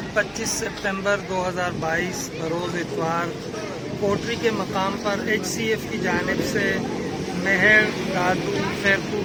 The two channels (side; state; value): both; identical; correlation 1.00